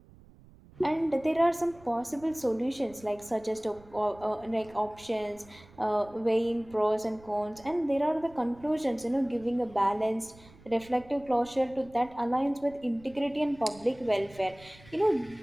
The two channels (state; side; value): noise; right; rumble, 23 dB below the sound